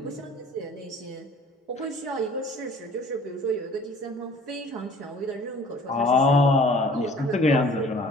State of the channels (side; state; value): both; normal; correlation 0.50